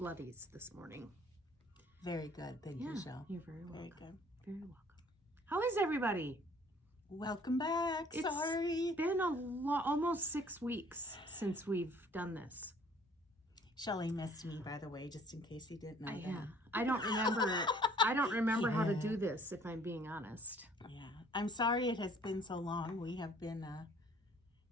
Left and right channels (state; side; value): normal; both; correlation 0.56